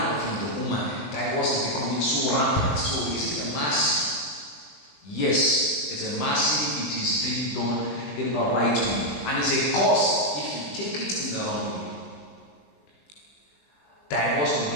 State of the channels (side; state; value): right; late; 20 ms